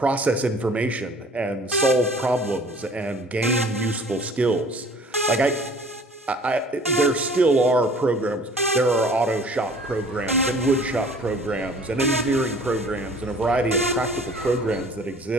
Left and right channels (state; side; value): normal; both; correlation 0.50